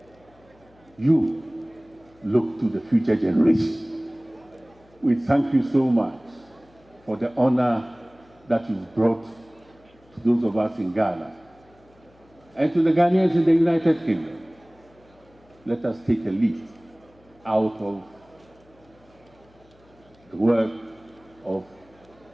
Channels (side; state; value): left; noise; hum, 30 dB below the sound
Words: you look to the future generation. We thank you so much for the honor that you've brought to those of us in Ghana and to the Ghanaians in the United Kingdom. Let us take a leaf out of the work of